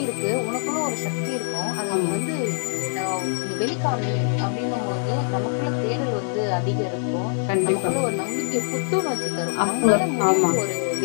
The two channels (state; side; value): silent; right; 63 dB below the other